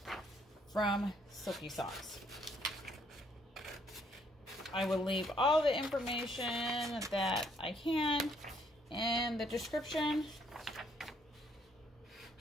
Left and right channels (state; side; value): normal; both; correlation 0.68